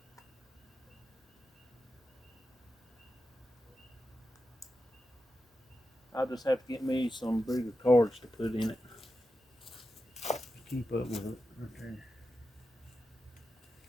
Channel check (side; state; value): both; normal; correlation 0.90